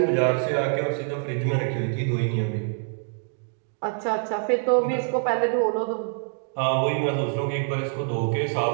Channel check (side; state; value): left; silent; digital silence